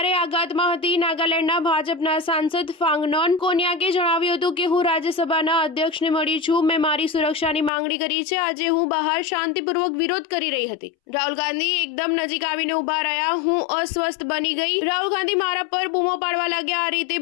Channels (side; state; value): right; drops out; at 7.7 s